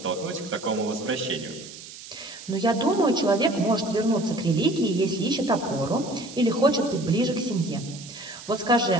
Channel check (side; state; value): right; noise; hiss, 15 dB below the sound